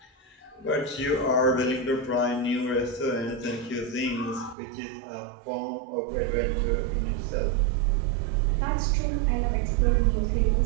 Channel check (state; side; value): drops out; left; at 4.5 s